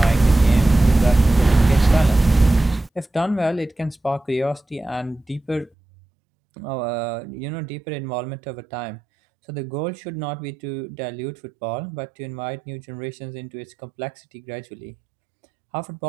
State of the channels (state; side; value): drops out; left; at 5.7 s